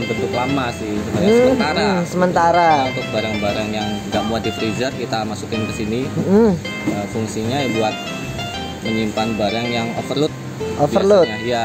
bentuk lama sih, sebenarnya sementara. Nah, untuk barang-barang yang nggak muat di freezer kita masukin ke sini. Fungsinya ya buat menyimpan barang yang overload.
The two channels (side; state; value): both; identical; correlation 1.00